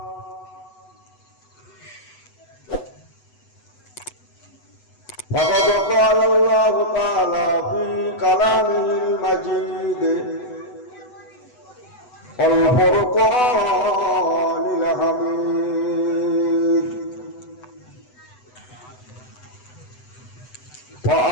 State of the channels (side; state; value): right; late; 8.0 ms